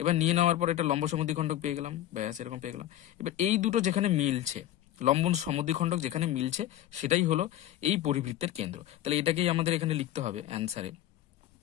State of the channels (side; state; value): right; quieter; 12.9 dB